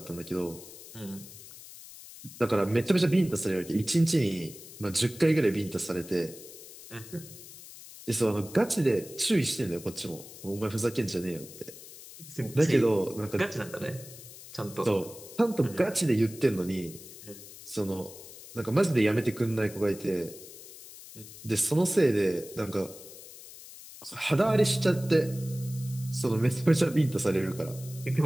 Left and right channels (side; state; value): left; noise; hiss, 16 dB below the sound